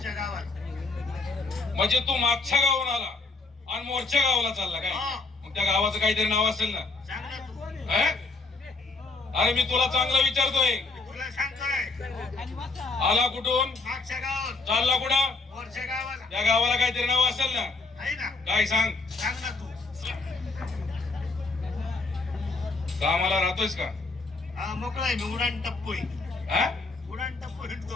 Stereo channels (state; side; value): quieter; right; 3.7 dB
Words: गावात. म्हणजे तू मागच्या गावून आला आणि मोर्च्या गावाला चालला काय? मग त्या गावाचं काहीतरी नाव असेल ना? अरे मी तुला चांगलं विचारतोय. तुला सांगतोय. आला कुठून? मागच्या गावात. चालला कुठं? मोर्च्या गावाला. त्या गावाला काहीतरी नाव असेल ना? आहे ना. काय सांग? सांग ना तू. कामाला राहतोयस का? मोकळा आहे मी. उडान टप्पू आहे. उडान टप्पू